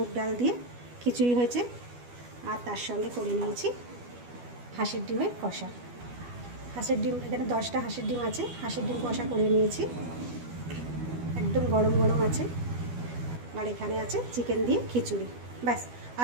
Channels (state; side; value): late; left; 12 ms